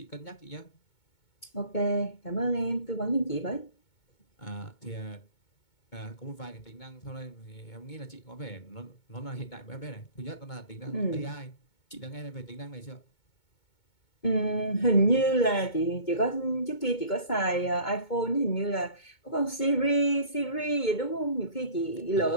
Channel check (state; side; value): late; right; 2.2 ms